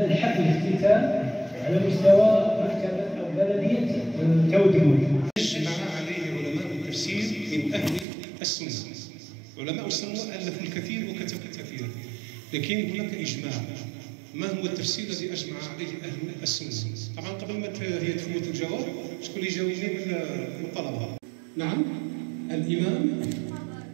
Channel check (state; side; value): drops out; left; at 8.1 s